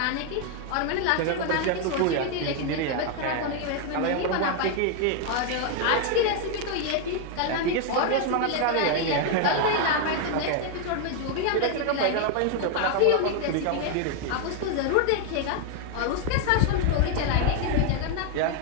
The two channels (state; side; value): different; both; correlation 0.01